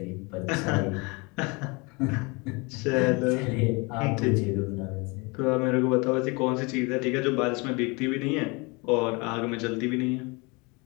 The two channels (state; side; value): quieter; right; 28.2 dB